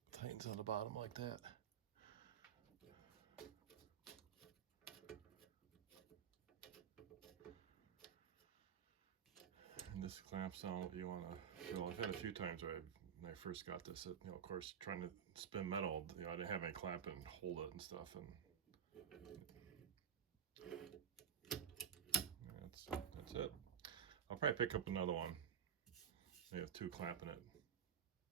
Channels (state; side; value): quieter; left; 8.1 dB